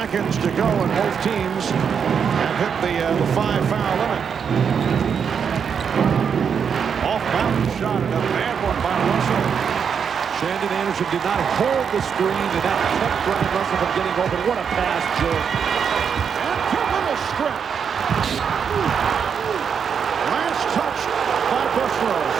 to go, and both teams have hit the 5-foul limit. Off-balance shot, and a bad one by Russell. Shannon Anderson did not hold the screen, and that kept Brian Russell from getting open. What a pass, Joe. And Pippen a strip. Last touch by Bushlow.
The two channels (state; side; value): quieter; left; 6.9 dB